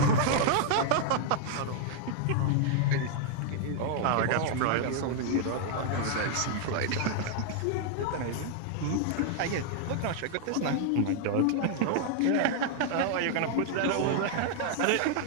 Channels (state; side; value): different; both; correlation 0.00